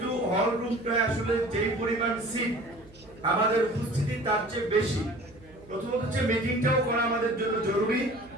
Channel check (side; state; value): right; noise; hum, 24 dB below the sound